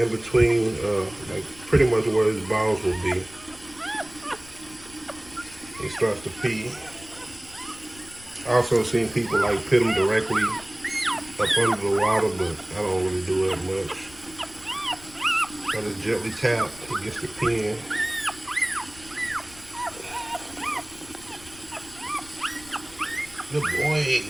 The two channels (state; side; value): noise; left; rumble, 21 dB below the sound